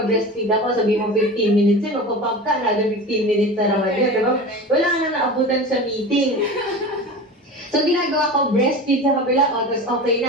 ako, sabi mo 15 minutes, magpapump ka, another 15 minutes na naman yun, diba? Wala ka na naabutan sa meeting. So, ginagawa ko, breastfeed sa kabila, tapos okay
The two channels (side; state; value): both; normal; correlation 0.32